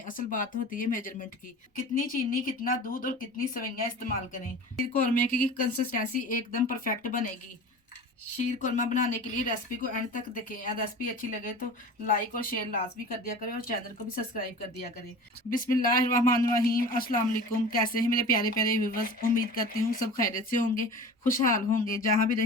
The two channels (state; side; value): normal; both; correlation 0.37